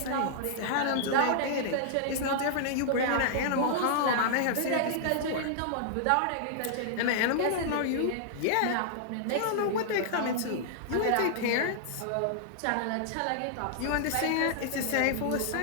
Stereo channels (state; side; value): different; both; correlation -0.01